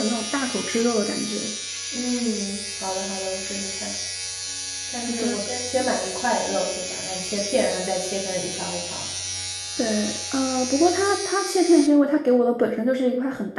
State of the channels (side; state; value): both; identical; correlation 1.00